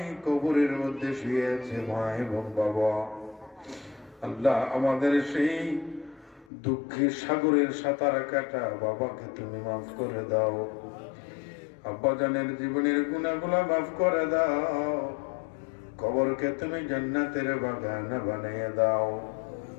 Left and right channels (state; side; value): drops out; right; at 6.5 s